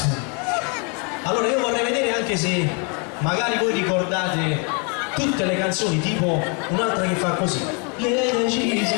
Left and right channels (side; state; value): right; quieter; 35.4 dB